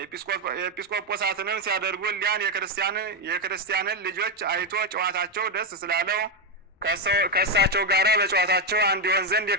ኤጲስቆጶሳትንም ሲያደርጉ ሊያን የክርስቲያንን ልጆች አይቶ ጨዋታቸው ደስ ስላለው ከእሳቸው ጋር በጨዋታቸው አንድ ይሆን ዘንድ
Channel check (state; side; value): normal; both; correlation 0.06